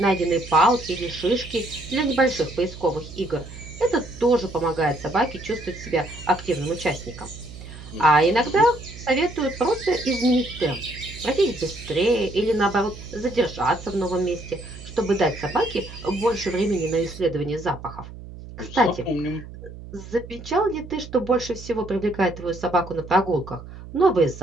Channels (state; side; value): noise; right; hum, 14 dB below the sound